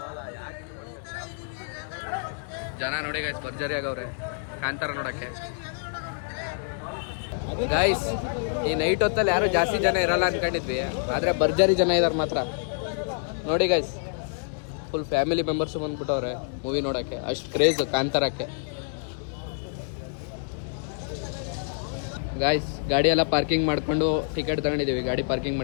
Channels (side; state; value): right; silent; digital silence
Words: ಜನ ನೋಡಿ ಗೈಸ್ ಭರ್ಜರಿ ಆಗವ್ರೆ ಕಾಂತಾರ ನೋಡಕ್ಕೆ. ಗೈಸ್ ಈ ನೈಟ್ ಹೊತ್ತಲ್ಲಿ ಯಾರು ಜಾಸ್ತಿ ಜನ ಇರಲ್ಲ ಅನ್ಕೊಂಡಿದ್ವಿ, ಆದ್ರೆ ಭರ್ಜರಿ ಜನ ಇದಾರೆ ಮಾತ್ರ. ನೋಡಿ ಗೈಸ್ ಫುಲ್ ಫ್ಯಾಮಿಲಿ ಮೆಂಬರ್ಸ್ ಬಂದ್ಬಿಟ್ಟವ್ರೆ ಮೂವಿ ನೋಡಕ್ಕೆ. ಅಷ್ಟು ಕ್ರೇಜ್ ಕಾಂತಾರಕ್ಕೆ. ಗಾಯ್ಸ್ ಗಾಡಿ ಎಲ್ಲ ಪಾರ್ಕಿಂಗ್ ಮಾಡ್ಕೊಂಡು ಟಿಕೆಟ್ ತಗೊಂಡಿದ್ದೀವಿ ಗಾಡಿ ಪಾರ್ಕಿಂಗ್